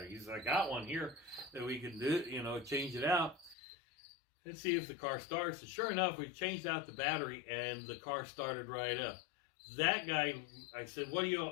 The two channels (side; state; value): right; drops out; at 3.6 s